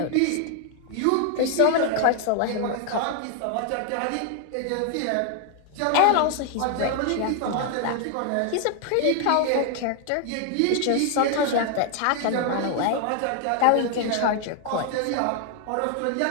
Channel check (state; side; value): different; both; correlation 0.00